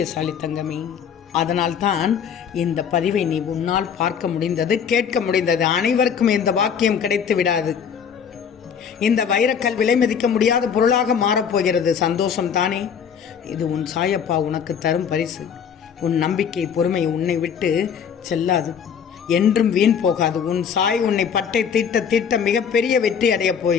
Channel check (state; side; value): quieter; right; 7.4 dB